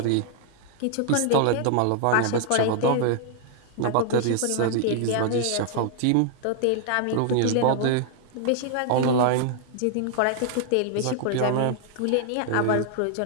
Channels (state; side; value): different; both; correlation -0.01